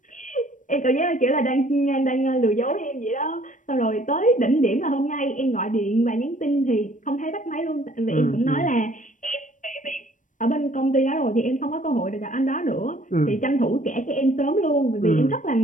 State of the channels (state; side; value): late; right; 0.37 ms